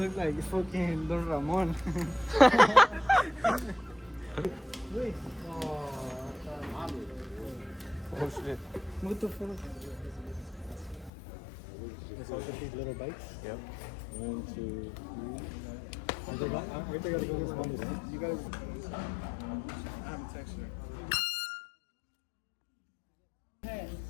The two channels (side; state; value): right; drops out; at 11.1 s